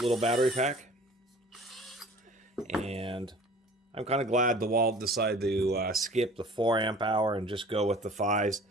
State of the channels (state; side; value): normal; both; correlation 0.46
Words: little battery pack. And I'm kind of glad DeWalt decided to skip the 4 amp hour and just go with the 5s.